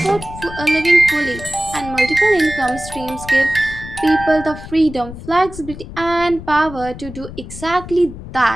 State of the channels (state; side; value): noise; left; rumble, 13 dB below the sound